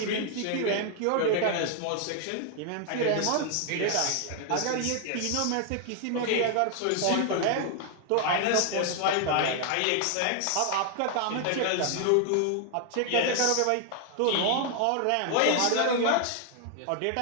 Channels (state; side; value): different; both; correlation 0.00